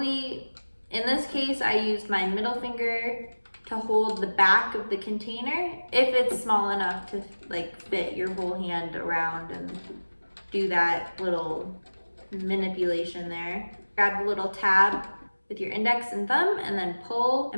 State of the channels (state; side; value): inverted; both; correlation -1.00